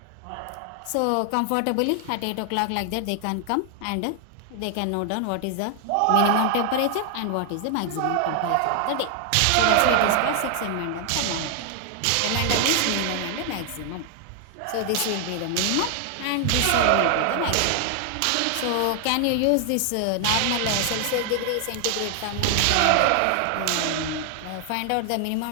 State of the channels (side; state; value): both; different; correlation 0.00